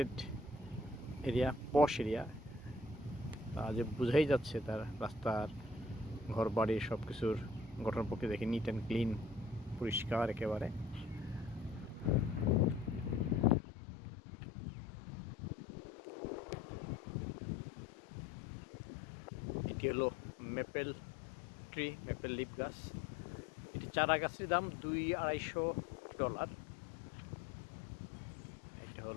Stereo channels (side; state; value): right; drops out; at 13.6 s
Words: এরিয়া, পশ এরিয়া। যে বোঝাই যাচ্ছে তার রাস্তার, ঘর বাড়ি সব কিছুর গঠন প্রকৃতি দেখে নিট অ্যান্ড ক্লিন, পরিষ্কার একেবারে। এটি হলো মেপেল ট্রি, মেপেল লিফ গাছ। এটি চারা গাছের দাম $200-250। এটা